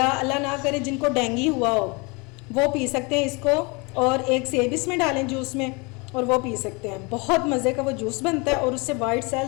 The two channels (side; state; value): right; quieter; 28.9 dB